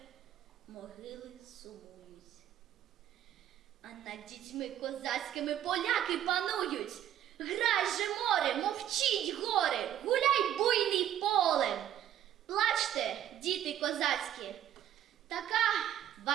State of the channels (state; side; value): quieter; left; 11.0 dB